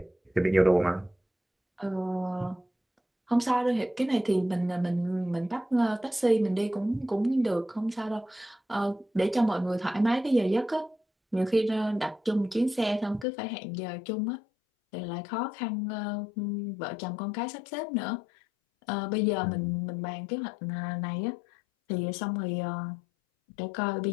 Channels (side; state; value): right; drops out; at 13.2 s